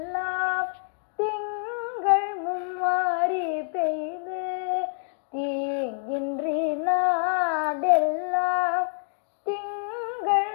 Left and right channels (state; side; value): silent; right; 57 dB below the other